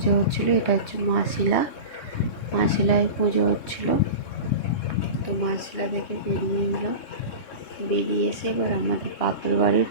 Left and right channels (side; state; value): right; late; 3.2 ms